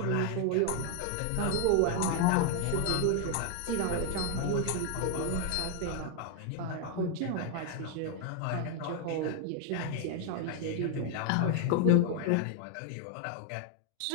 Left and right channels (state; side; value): different; both; correlation 0.00